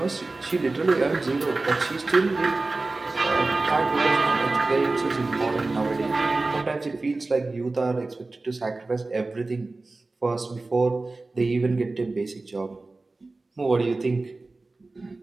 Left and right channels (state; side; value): quieter; left; 3.3 dB